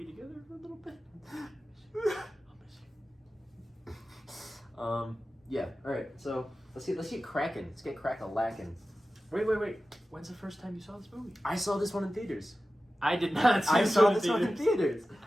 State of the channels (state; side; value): normal; both; correlation 0.94